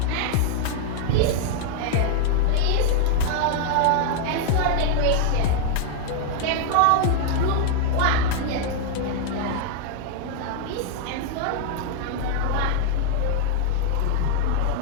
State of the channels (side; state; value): both; different; correlation 0.00